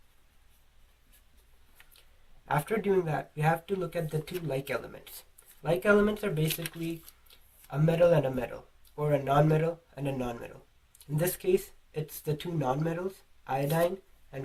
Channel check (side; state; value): both; identical; correlation 1.00